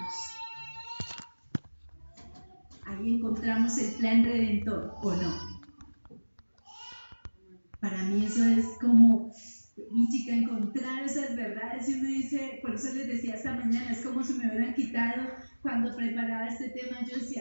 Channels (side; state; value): both; inverted; correlation -1.00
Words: Ahí encontramos el plan redentor, ¿o no? Para mí eso es como, mi chica, encontrar esas verdades, y uno dice, por eso les decía esta mañana, es como si me hubieran quitado, cuando preparaba este tema, yo